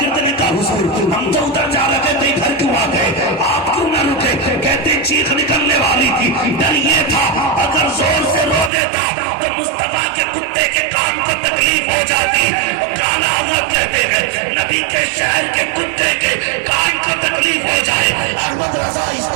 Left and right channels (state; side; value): drops out; left; at 8.7 s